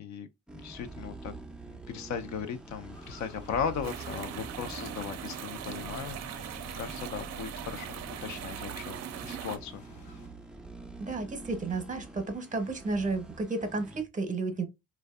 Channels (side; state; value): both; normal; correlation 0.31